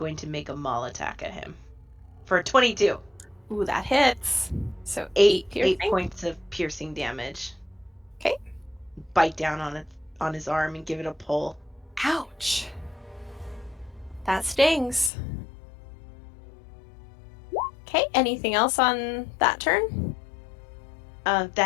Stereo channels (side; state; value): right; drops out; at 15.1 s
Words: maul attack at him for 22. Ooh, that hits. So 8 piercing. points of piercing damage. Okay. Bite down on his arm and give it a pull. Ouch. That stings. Okay, anything else on that turn?